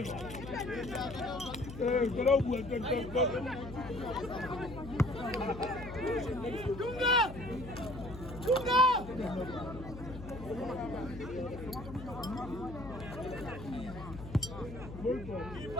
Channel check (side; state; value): left; noise; hum, 12 dB below the sound